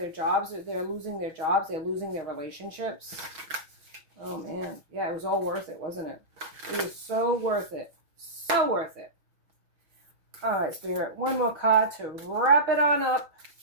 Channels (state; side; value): late; left; 6.4 ms